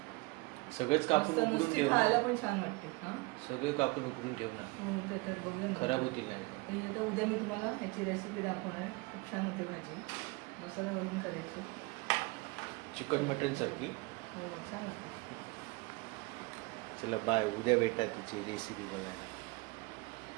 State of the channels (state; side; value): quieter; left; 25.2 dB